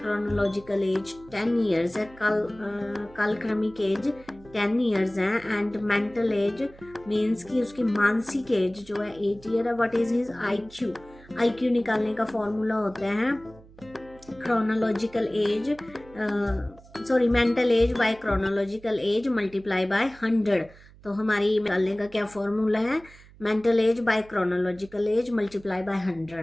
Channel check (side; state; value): right; noise; hum, 23 dB below the sound